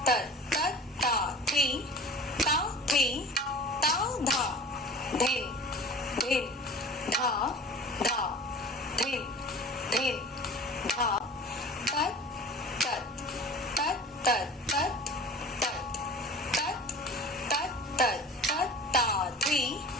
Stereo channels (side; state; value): both; normal; correlation 0.40